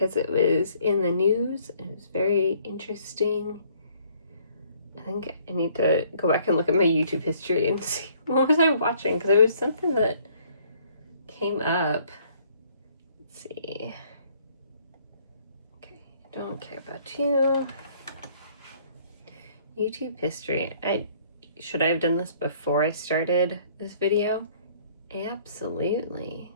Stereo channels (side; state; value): both; inverted; correlation -0.61